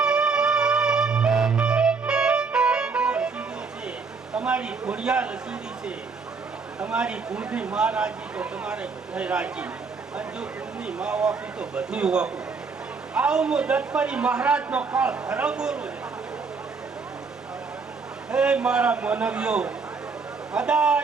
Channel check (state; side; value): quieter; left; 4.8 dB